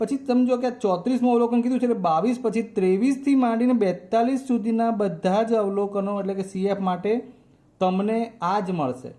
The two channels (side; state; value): both; identical; correlation 1.00